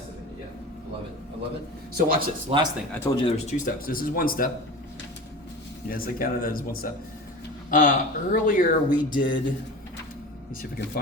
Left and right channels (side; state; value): both; normal; correlation 0.33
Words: it. Yeah. I love it. I love it. So watch this. Last thing. I told you there was 2 steps. This is 1 step. Yes, I counted that as 1 step. Earlier we did, let me see if I can